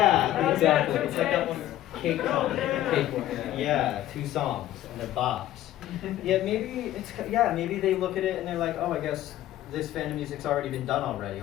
exactly. It's like that one cake yeah, 2 songs and they're bops. Yeah, maybe they look at it and they're like, oh, I guess this fandom music's already been done already.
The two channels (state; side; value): quieter; right; 13.6 dB